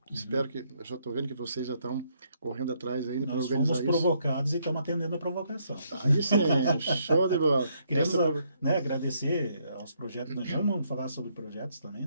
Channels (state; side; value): inverted; both; correlation -0.72